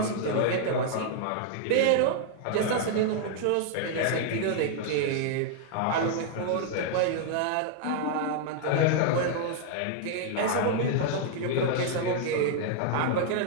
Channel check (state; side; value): different; both; correlation 0.00